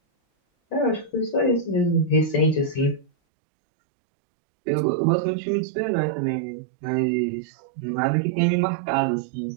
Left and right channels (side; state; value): left; drops out; at 3.1 s